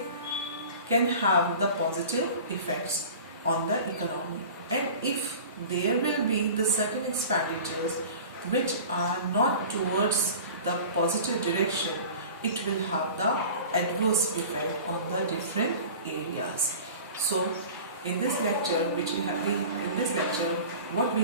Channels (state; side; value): inverted; both; correlation -0.39